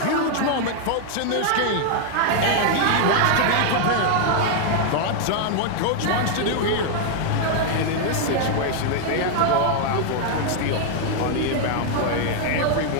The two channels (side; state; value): both; different; correlation 0.00